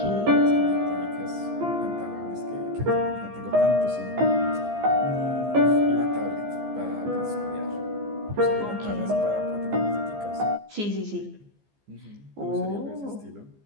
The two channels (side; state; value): left; late; 15 ms